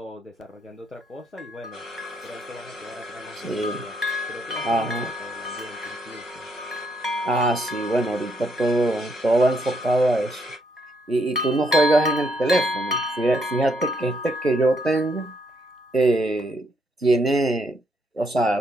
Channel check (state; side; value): normal; both; correlation 0.73